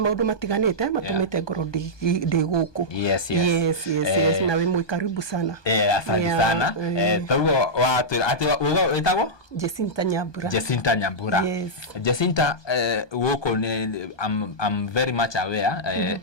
matiganite matumite ngoro ndi guku. Yes. Na we muikaribu sana. Asante sana. Taguo watwira ati witagwo Jacinta Nyambura. Yes. Jacinta guku ni I'm very much aware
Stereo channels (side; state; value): right; late; 1.2 ms